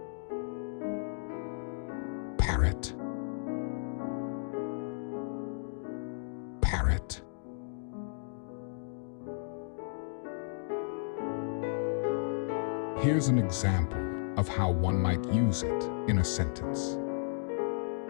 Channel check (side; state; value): right; silent; digital silence